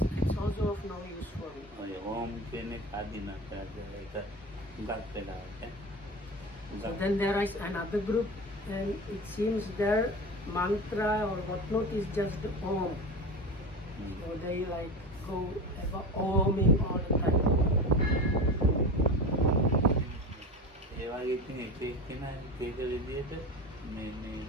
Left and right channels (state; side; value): normal; both; correlation 0.28